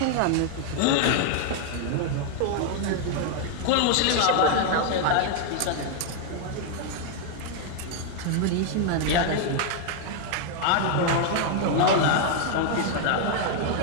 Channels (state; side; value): different; both; correlation 0.00